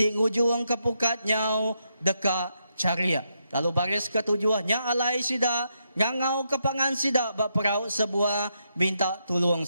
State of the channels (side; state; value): both; inverted; correlation -0.80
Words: ngujung ke pukat nyau deka caria lalu baris ke-7 nya alai sida ngangau ke pangan sida bak perahu sebuah minta tolong